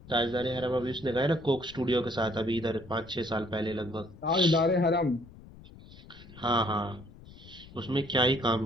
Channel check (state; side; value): noise; left; rumble, 19 dB below the sound